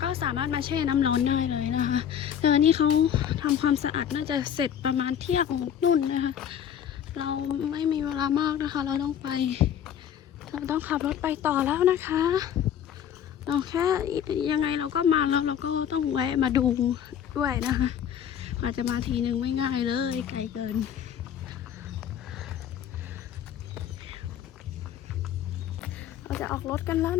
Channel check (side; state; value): right; quieter; 9.3 dB